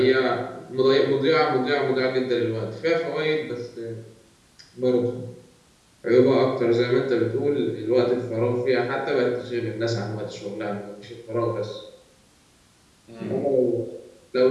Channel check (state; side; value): identical; both; correlation 1.00